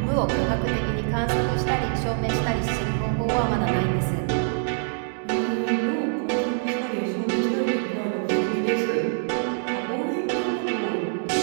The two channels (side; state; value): left; silent; digital silence